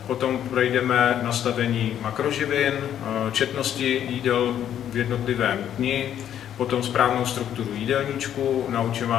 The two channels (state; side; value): quieter; right; 10.2 dB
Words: Potom projdeme nastavení makroživin, četnosti jídel v jednotlivém dni, potom správnou strukturu jídelníčku, naučím